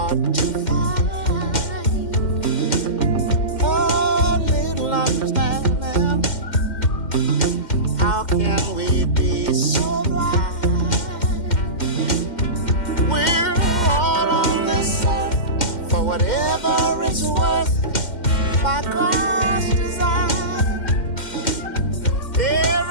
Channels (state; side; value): late; right; 2.1 ms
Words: to find a little understanding whatever it's worth by God's design.